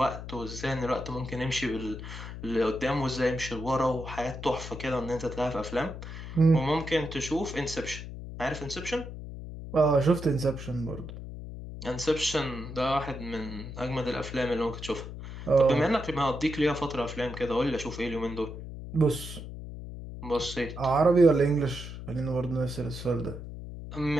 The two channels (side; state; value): left; noise; hum, 10 dB below the sound